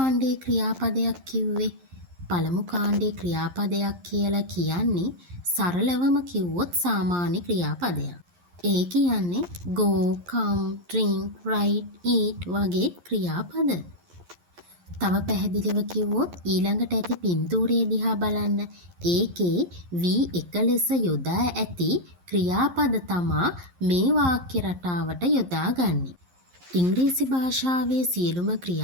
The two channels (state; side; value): late; left; 11 ms